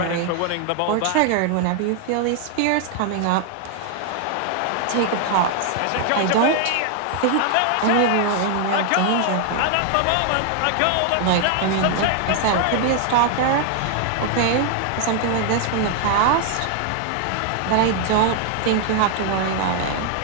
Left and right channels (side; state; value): both; different; correlation 0.00